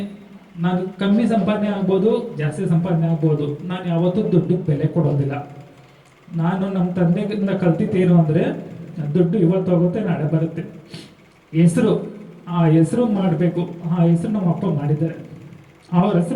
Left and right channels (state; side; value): identical; both; correlation 1.00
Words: ನಾನು ಕಮ್ಮಿ ಸಂಪಾದನೆ ಆಗ್ಬೋದು, ಜಾಸ್ತಿ ಸಂಪಾದನೆ ಆಗ್ಬೋದು. ನಾನು ಯಾವತ್ತೂ ದುಡ್ಡಿಗೆ ಬೆಲೆ ಕೊಡೋದಿಲ್ಲ. ನಾನು ನಮ್ಮ ತಂದೆಗಿಂದ ಕಲ್ತಿದ್ದೇನು ಅಂದರೆ ದುಡ್ಡು ಇವತ್ತು ಹೋಗುತ್ತೆ, ನಾಳೆ ಬರುತ್ತೆ. ಹೆಸರು, ಆ ಹೆಸರು ಮಾಡಬೇಕು. ಆ ಹೆಸರು ನಮ್ಮ ಅಪ್ಪ ಮಾಡಿದ್ದಾರೆ. ಅವ್ರ